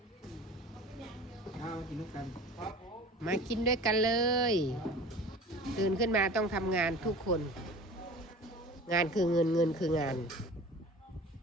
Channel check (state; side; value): normal; both; correlation 0.40